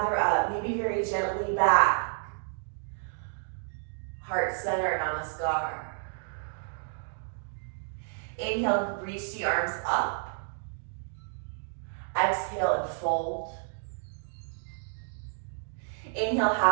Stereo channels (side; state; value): left; silent; digital silence